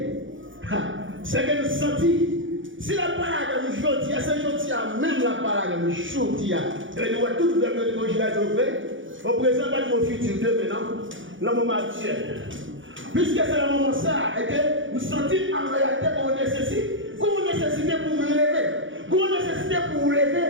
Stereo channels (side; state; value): left; late; 0.56 ms